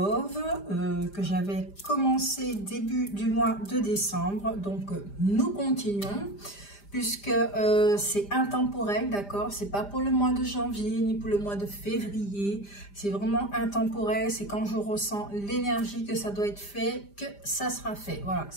que j'avais commencé début du mois de décembre. Donc nous continuons puisque c'est intemporel, d'accord? C'est pas pour le mois de janvier ni pour le mois de février. C'est vraiment intemporel. C'est quand je ressens l'énergie que ça doit être fait que ça sera fait. Voilà,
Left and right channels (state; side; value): late; right; 5.0 ms